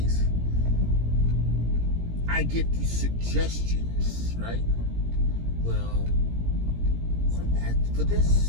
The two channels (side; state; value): left; late; 17 ms